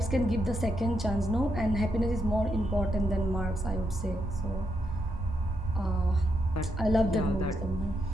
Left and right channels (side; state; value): both; normal; correlation 0.80